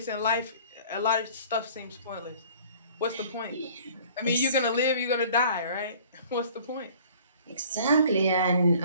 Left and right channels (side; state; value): both; inverted; correlation -0.51